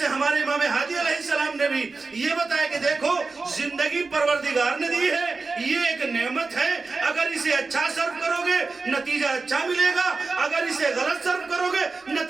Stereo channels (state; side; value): quieter; left; 4.0 dB